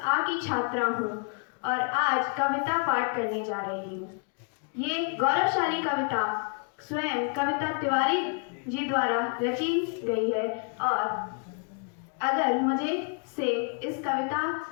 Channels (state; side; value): quieter; right; 39.5 dB